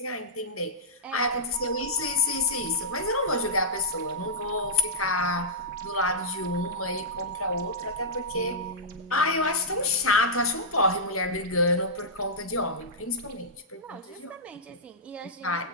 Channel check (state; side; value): normal; both; correlation -0.12